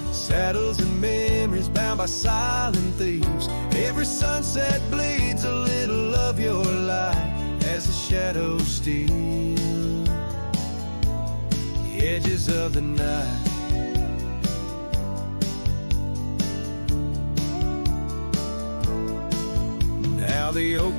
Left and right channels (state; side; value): inverted; both; correlation -1.00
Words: saddles and memories bound by silent thieves. Every sunset bleeds a little of your light as the shadows steal the edges of the night. Now the oak